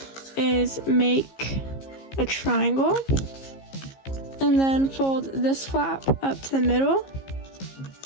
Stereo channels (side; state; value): right; late; 15 ms